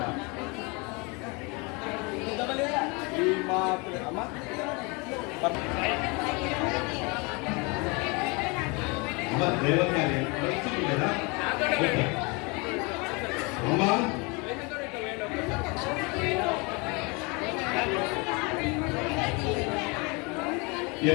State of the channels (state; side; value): quieter; right; 29.0 dB